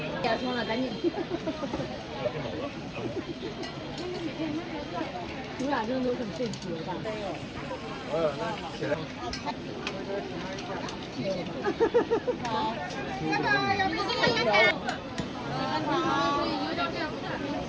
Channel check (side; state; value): both; identical; correlation 1.00